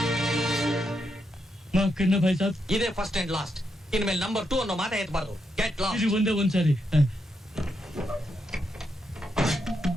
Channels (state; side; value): normal; both; correlation 0.82